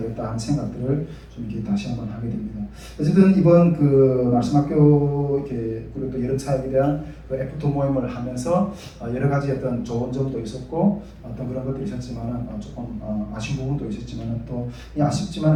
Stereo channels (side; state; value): both; identical; correlation 1.00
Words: 하는 생각들을 좀 이렇게 다시 한번 하게 됩니다. 어쨌든 이번 그 말씀학교 그리고 또 여름 사역에 대한 그 F2 모임을 하면서 여러 가지 어떤 좋은 점도 있었고 어떤 그런 것들이 있었지만은 조금 아쉬운 부분도 있었지만은 또